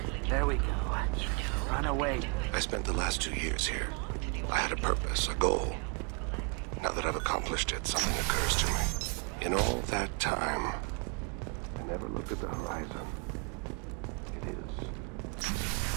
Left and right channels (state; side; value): quieter; left; 36.3 dB